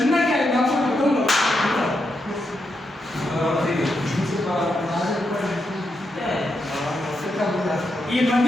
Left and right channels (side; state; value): both; normal; correlation 0.83